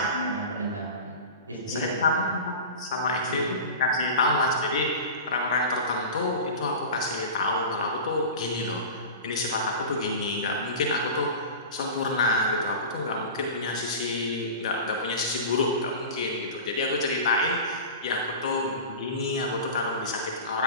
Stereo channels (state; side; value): inverted; both; correlation -0.31